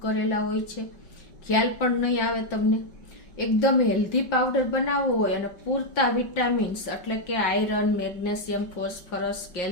કરેલા હોય છે, ખ્યાલ પણ નહીં આવે તમને। એકદમ હેલ્ધી પાવડર બનાવવો હોય અને પૂરતા વિટામિન્સ એટલે કે આયરન, મેગ્નેશિયમ, ફોસ્ફરસ,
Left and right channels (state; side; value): late; right; 5.3 ms